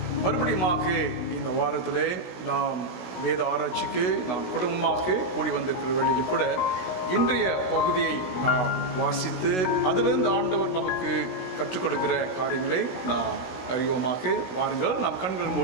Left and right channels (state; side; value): late; right; 16 ms